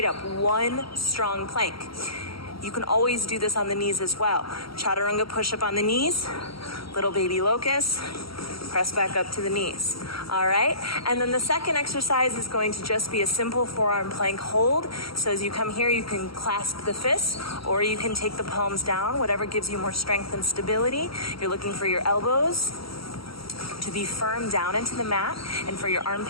up, 1 strong plank. You can always do this on the knees as well. Chaturanga Push-Up on the knees, little baby locust, press back up to the knees. All right, and then the second exercise is going to just be a simple forearm plank hold. So as you come here, you can clasp the fists, or you can take the palms down, whatever gives you more strength and stability. You're looking for your elbows to be firm down into the mat, and for your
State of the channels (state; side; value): late; right; 0.75 ms